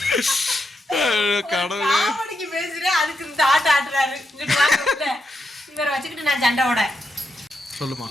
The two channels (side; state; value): both; normal; correlation 0.83